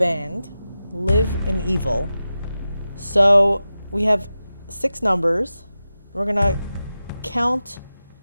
Live in Evil. So we have 6 numbers. We're gonna count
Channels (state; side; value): inverted; both; correlation -0.93